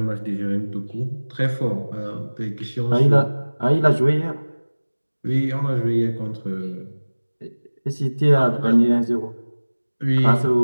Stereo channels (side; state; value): both; inverted; correlation -1.00